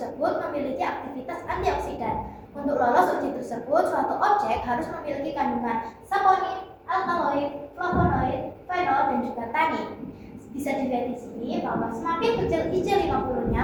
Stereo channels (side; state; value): both; identical; correlation 1.00